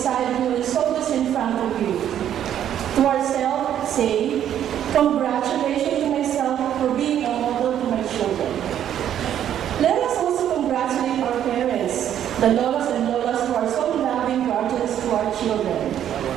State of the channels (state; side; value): quieter; left; 10.3 dB